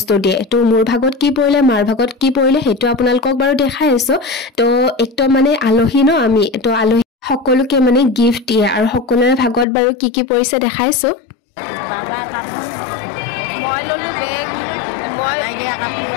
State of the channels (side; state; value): right; drops out; at 9.7 s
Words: দিয়ে তো মোৰ ভাগত কি পৰিলে মাৰ ভাগত কি পৰিলে হেতু আপোনালোকক বাৰু দেখাই আছো তো একদম মানে আলহী ন আমি তো আলহী সকলোকে মানে গিফট দিয়ে আৰু সকলোৰে ভাগত বাৰু কি পৰিছে দেখাইছো Baba kamu. মই ললো বেগ মই Lagi kamu.